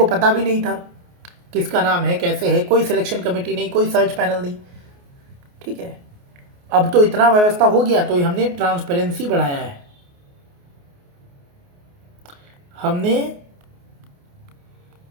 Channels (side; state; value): left; late; 28 ms